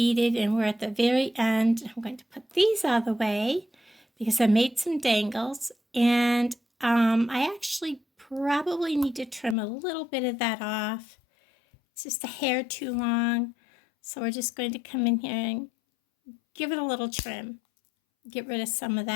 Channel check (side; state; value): right; drops out; at 9.6 s